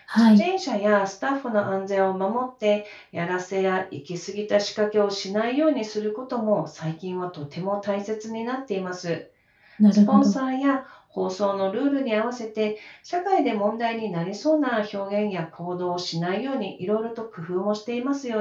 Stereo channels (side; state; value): both; identical; correlation 1.00